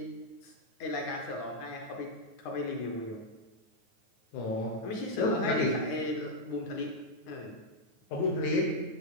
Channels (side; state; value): right; late; 9.4 ms